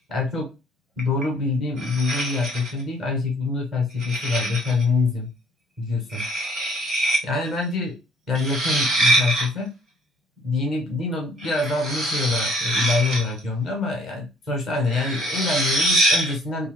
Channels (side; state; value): both; normal; correlation 0.59